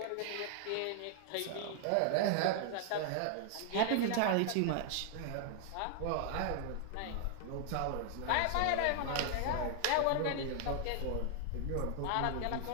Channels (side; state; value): both; different; correlation 0.00